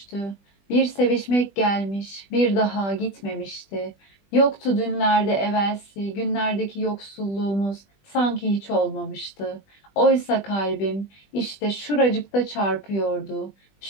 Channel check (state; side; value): late; right; 20 ms